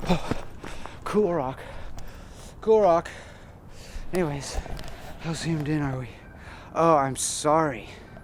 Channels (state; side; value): identical; both; correlation 1.00